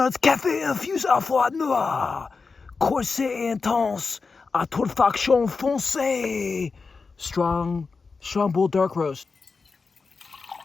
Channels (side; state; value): right; quieter; 4.6 dB